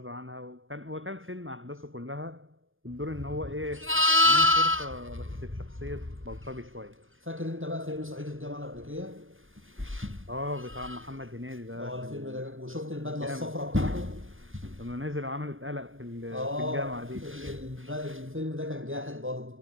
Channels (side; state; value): left; late; 0.59 ms